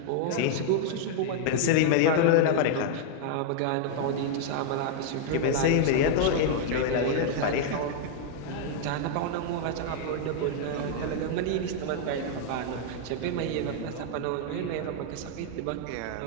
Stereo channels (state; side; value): different; both; correlation 0.00